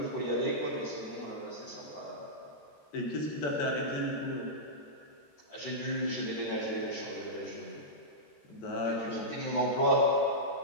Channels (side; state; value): right; late; 13 ms